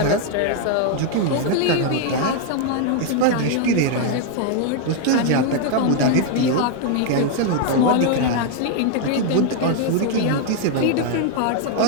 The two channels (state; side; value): different; both; correlation 0.00